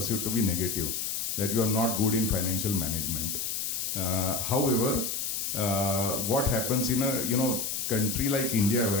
to be negative, that you are not good in financial management. However, what happens in a country like India,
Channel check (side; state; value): left; noise; hiss, 2 dB below the sound